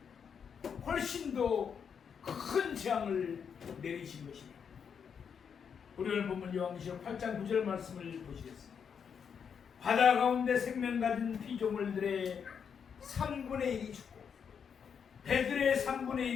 훨씬 더 큰 재앙을 내리신 것입니다. 우리 오늘 본문 요한계시록 8장 9절 말씀을 보시겠습니다. 바다 가운데 생명 가진 피조물들의 3분의 1이 죽고 배들의 3분의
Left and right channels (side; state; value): right; quieter; 7.0 dB